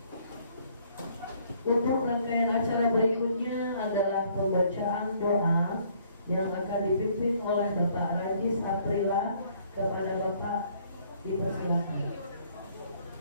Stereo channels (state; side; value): inverted; both; correlation -0.63